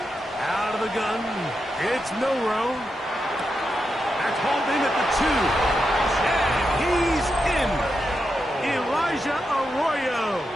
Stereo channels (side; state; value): both; normal; correlation 0.86